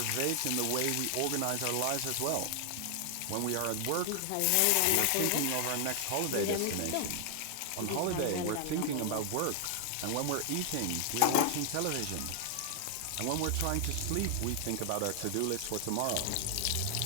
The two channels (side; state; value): both; different; correlation 0.00